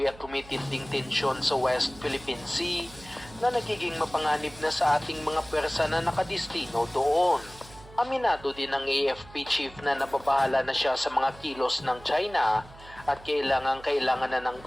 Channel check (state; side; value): noise; right; hum, 20 dB below the sound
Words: at tumitinding tensyon sa West Philippine Sea na nagiging mapanganib na sa ating mga pwersa na nakadistino doon. Aminado din ng AFP Chief na nababahala na siya sa mga kilos ng China at kailangan na ng